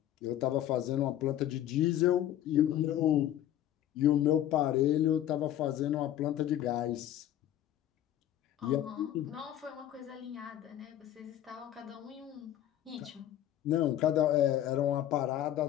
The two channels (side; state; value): right; quieter; 12.0 dB